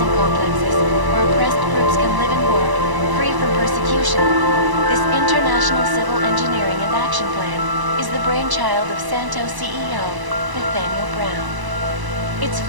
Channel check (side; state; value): left; late; 1.0 ms